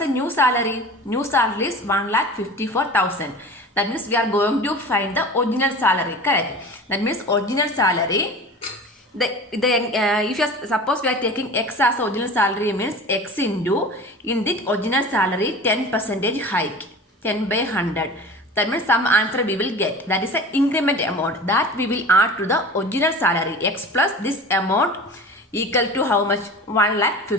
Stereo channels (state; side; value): normal; both; correlation 0.36